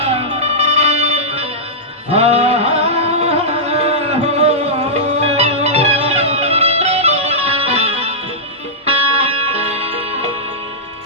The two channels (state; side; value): normal; both; correlation -0.12